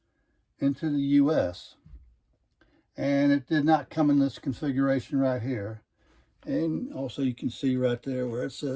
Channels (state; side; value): identical; both; correlation 1.00